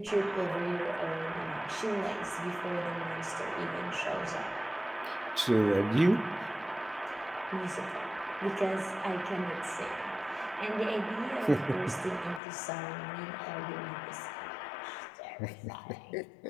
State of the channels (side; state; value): right; drops out; at 12.4 s